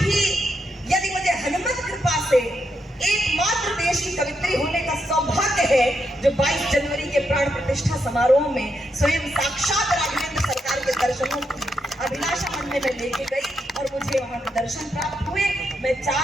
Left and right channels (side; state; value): both; normal; correlation 0.81